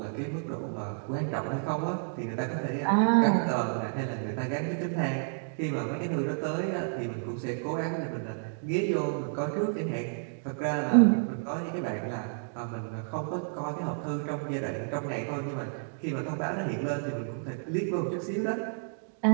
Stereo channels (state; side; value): silent; left; digital silence